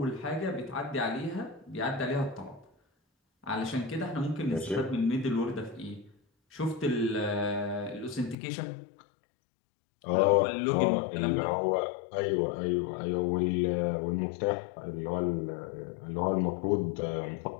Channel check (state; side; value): drops out; right; at 8.3 s